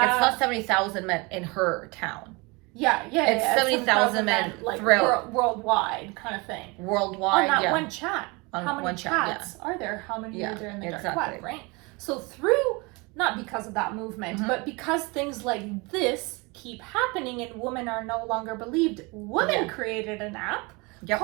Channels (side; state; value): left; quieter; 27.0 dB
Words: it's not 70,000 men in her town. It's 70,000 men like throughout worldwide kind of thing. worldwide. On that one chat. On How many one chat, chats are there? How many are there in the dark exactly. web, right? So through, not because of that movement, but because things like this keep happening and women are no longer believed, women created an app